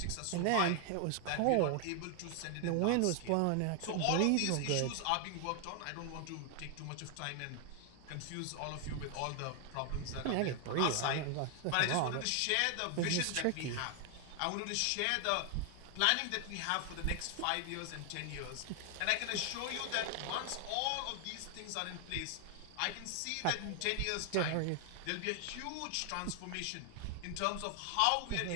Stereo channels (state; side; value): different; both; correlation 0.00